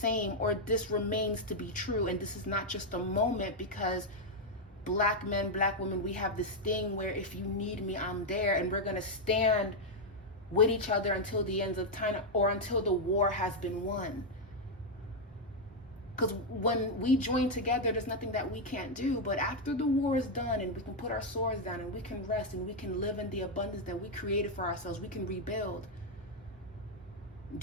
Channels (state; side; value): normal; both; correlation 0.00